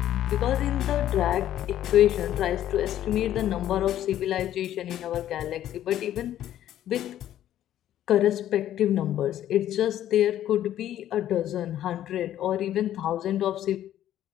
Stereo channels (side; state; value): right; quieter; 12.0 dB